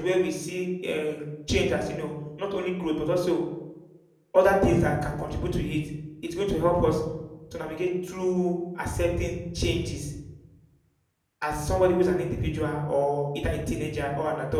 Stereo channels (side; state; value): both; identical; correlation 1.00